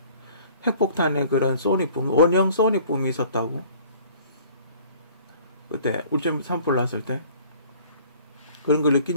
핵폭탄의 그런 소닉붐, 원형 소닉붐이 있었다고. 그때 울진 산불 났을 때 그런 걸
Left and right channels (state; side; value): inverted; both; correlation -0.51